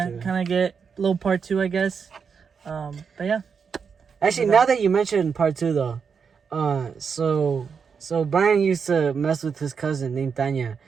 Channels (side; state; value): left; quieter; 6.2 dB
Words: Kind of get a little part 2, I guess. But yeah. Actually, now that you mentioned part 2, though, so Brian used to mess with his cousin named Tanya.